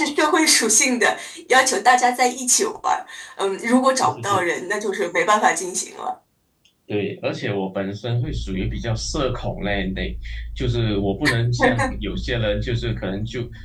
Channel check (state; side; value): identical; both; correlation 1.00